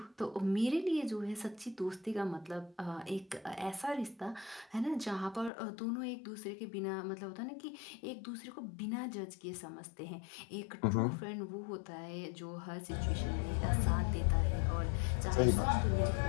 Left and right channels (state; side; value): drops out; right; at 5.5 s